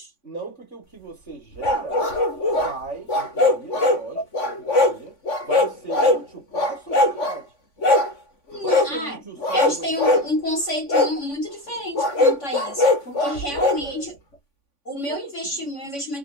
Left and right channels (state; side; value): late; right; 3.5 ms